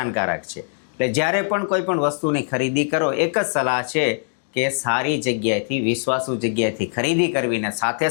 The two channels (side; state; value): right; silent; digital silence